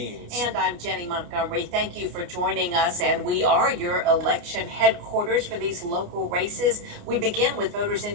And I'm Jenny Montgomery. Thank you for joining us. And we are your election headquarters for these local races. We begin with voters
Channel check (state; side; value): late; left; 29 ms